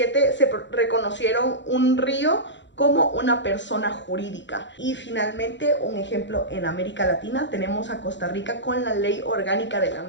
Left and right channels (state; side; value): late; right; 0.53 ms